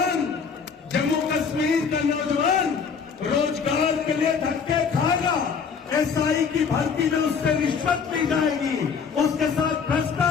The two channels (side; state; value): right; quieter; 6.0 dB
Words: जम्मू कश्मीर का नौजवान रोजगार के लिए धक्के खाएगा। एसआई की भर्ती में उससे रिश्वत ली जाएगी, उसके साथ